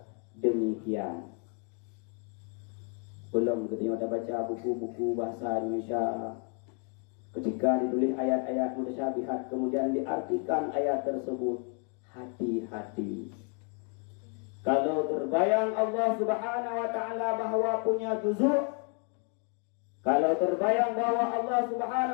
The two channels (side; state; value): right; quieter; 39.8 dB